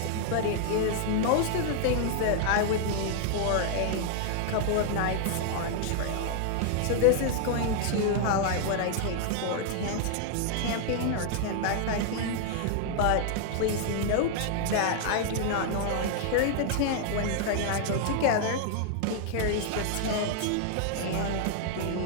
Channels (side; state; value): both; different; correlation 0.00